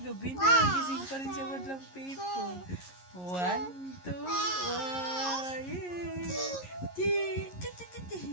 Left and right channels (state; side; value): late; right; 11 ms